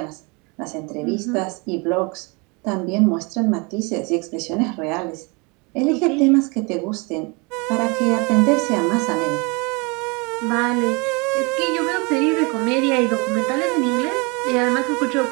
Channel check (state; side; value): quieter; left; 29.7 dB